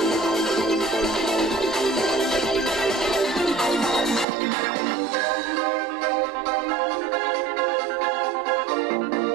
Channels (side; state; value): left; drops out; at 4.2 s